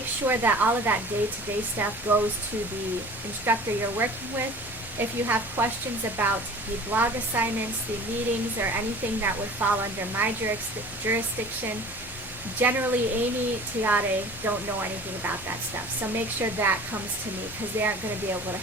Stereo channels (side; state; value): both; normal; correlation 0.43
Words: sure that all of that day-to-day stuff goes to the instructor you're working with. If you have questions about the blog assignments, the meetings, or anything that would fall under my jurisdiction, Generally, Amy, Tiare don't know anything about that stuff. So make sure that comes to me because they aren't going to be able to